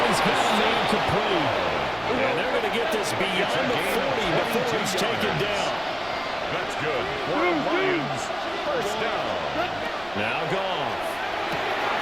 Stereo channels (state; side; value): noise; right; rumble, 22 dB below the sound